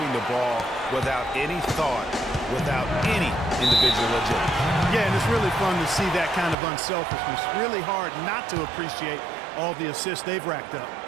the ball without any thought, without any individual agility. Yeah, and it's really fun to see that kind of unselfishness. Really hard not to appreciate all the assists they've racked up.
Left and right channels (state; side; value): drops out; left; at 6.6 s